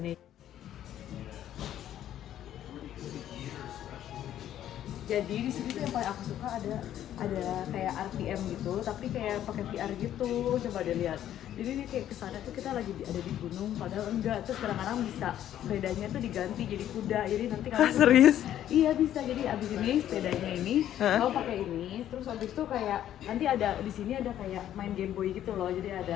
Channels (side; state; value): right; quieter; 11.5 dB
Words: Jadi di sini tuh yang paling aku suka ada kayak RTM gitu, tapi kayak pakai VR gitu. Coba deh lihat. Jadi ini kayak kesana tuh kita lagi ada di gunung, padahal enggak. Terus kadang-kadang bisa sepedanya tuh diganti jadi kuda. Jadi nanti kalau serius? Iya bisa. Jadi abis ini sepedanya ini, kalau pakai ini, terus abis itu kayak nanti ada di sini ada kayak main Game Boy gitu loh. Jadi